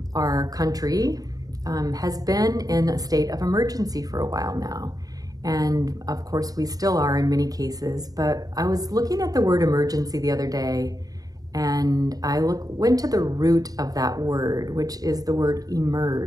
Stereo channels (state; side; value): late; left; 0.18 ms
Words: our country, has been in a state of emergency for a while now. And of course we still are in many cases, but I was looking at the word emergency the other day and I went to the root of that word, which is the word